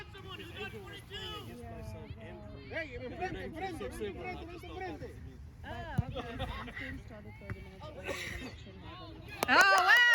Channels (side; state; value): both; identical; correlation 1.00